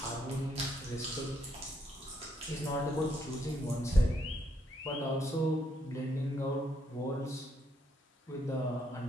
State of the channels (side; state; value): both; normal; correlation 0.74